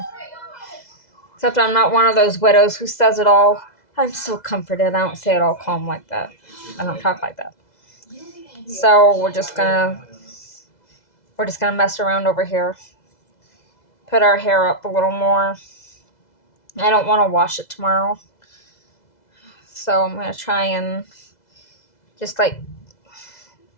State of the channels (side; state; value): right; late; 2.0 ms